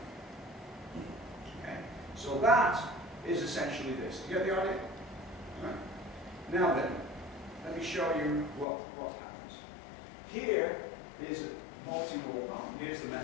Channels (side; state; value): right; drops out; at 8.7 s